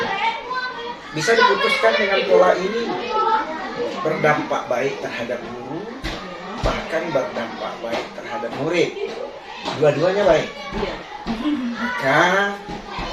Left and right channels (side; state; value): both; identical; correlation 1.00